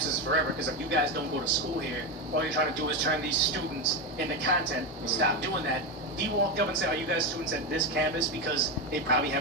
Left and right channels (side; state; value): both; normal; correlation 0.13